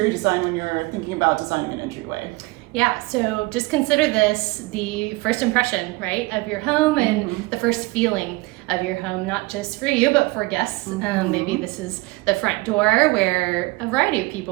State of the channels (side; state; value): left; quieter; 23.0 dB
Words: design when you're thinking about designing an entryway? Yeah, so just consider this the first impression, right, of your home and the first feeling of your home, not just for you, but for guests. Maybe this is the front door where a variety of